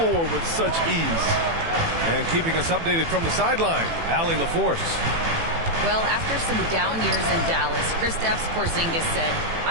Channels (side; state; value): left; late; 18 ms